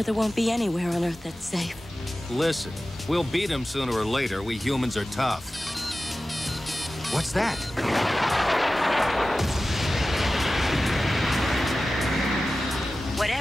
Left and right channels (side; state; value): both; normal; correlation 0.95